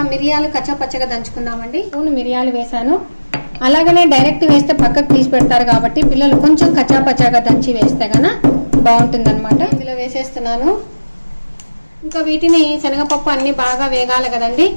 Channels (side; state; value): both; inverted; correlation -1.00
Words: మిరియాలు కచ్చపచ్చగా దంచుకుందామండి. స్పూను మిరియాలు వేసాను. అలాగనే డైరెక్ట్ వేస్తే పక్కకు తీసి పెడతారు కాబట్టి పిల్లలు కొంచెం కచ్చాపచ్చాగా దంచి వేస్తే గన బాగుంటుంది అనమాట. ఇందులో వేసేస్తున్నాను. ఇంకా వీటిని శనగపప్పు అన్ని బాగా వేగాలి కదండి.